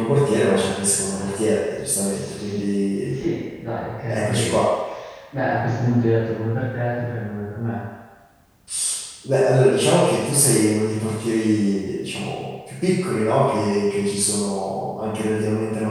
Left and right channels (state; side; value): identical; both; correlation 1.00